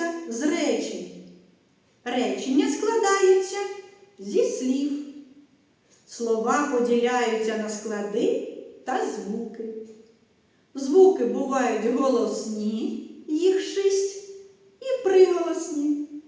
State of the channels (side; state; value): both; identical; correlation 1.00